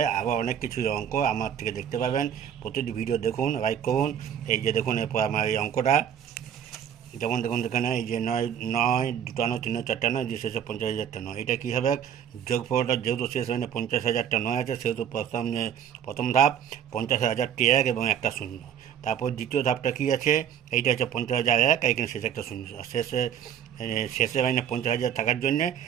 আবার অনেক কিছু অঙ্ক আমার থেকে দেখতে পাবেন। প্রতিটি ভিডিও দেখুন, লাইক করুন। এই যে দেখুন, এরপর আমার এই অঙ্কটা যেমন দেখুন এখানে এই যে নয় নয়, দুটা নয়, তিন নয়, চারটা নয়, যে শেষে 50,000টা নয়। এটা কী হবে? যোগফলটা যেহেতু শেষ মানে 50,000টা নয় আছে, সেহেতু প্রথম ধাপ 50,000টি এক এবং একটা শূন্য। তারপর দ্বিতীয় ধাপটা কী আছে? এইটা হচ্ছে 50,001, এইখানে শেষে একটা শূন্য। আর শেষে মানে 50,000 থাকার জন্যে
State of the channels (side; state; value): left; quieter; 9.0 dB